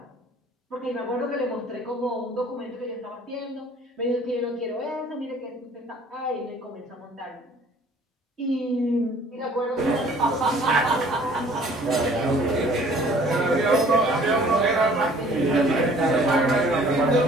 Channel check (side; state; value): both; normal; correlation 0.54